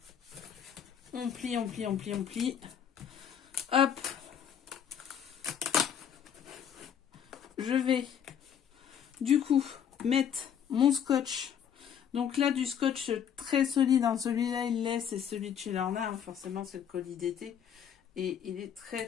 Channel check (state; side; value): quieter; right; 8.6 dB